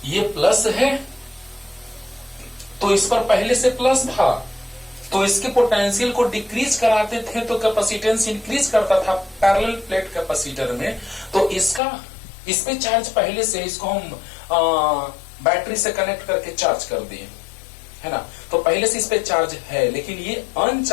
ये प्लस है तो इस पर पहले से प्लस था, तो इसके पोटेंशियल को डिक्रीज कराते थे तो कैपेसिटेंस इंक्रीज करता था पैरेलल प्लेट कैपेसिटर में। तो इस पे चार्ज पहले से, इसको हम बैटरी से कनेक्ट करके चार्ज कर दिए, है ना। तो पहले से इस पे चार्ज है, लेकिन ये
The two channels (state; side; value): drops out; right; at 11.8 s